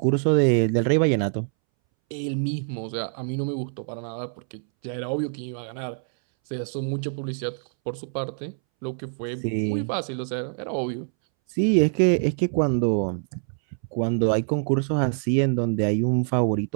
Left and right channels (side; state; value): left; silent; 62 dB below the other